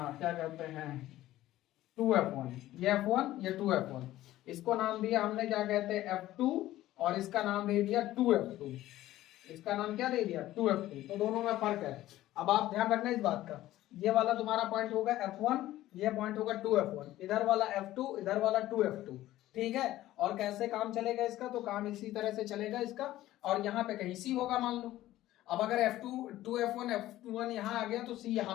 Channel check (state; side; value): quieter; right; 15.0 dB